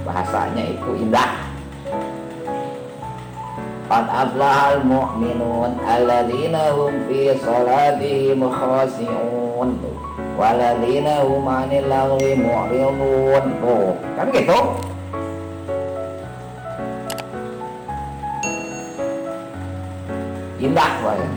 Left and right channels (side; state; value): both; identical; correlation 1.00